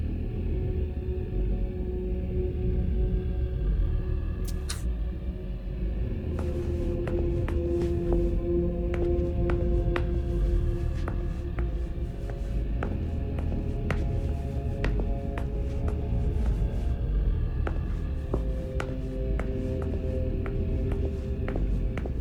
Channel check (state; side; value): identical; both; correlation 1.00